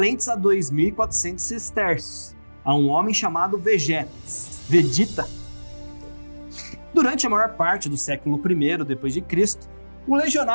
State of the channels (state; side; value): inverted; both; correlation -1.00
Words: a 2.400 sestércios, a um homem chamado Vegeta. Durante a maior parte do século I d.C., o